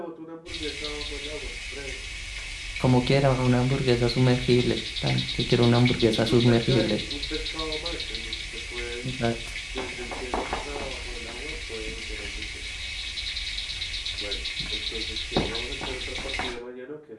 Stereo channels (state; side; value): identical; both; correlation 1.00